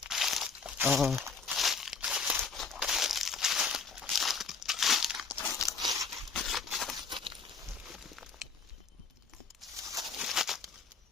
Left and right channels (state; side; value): quieter; right; 5.1 dB